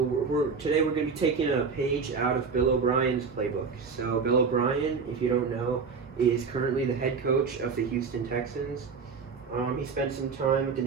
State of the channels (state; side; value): quieter; left; 5.3 dB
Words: today we're going to be taking a page out of Bill O'Brien's playbook. So Bill O'Brien, if you don't know, is currently the head coach of the Houston Texans. He spent some time with the